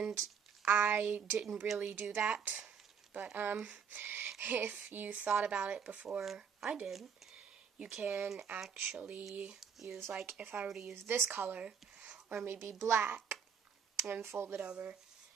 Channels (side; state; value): left; quieter; 6.9 dB